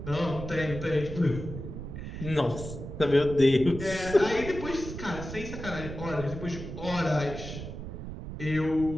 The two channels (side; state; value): right; noise; rumble, 9 dB below the sound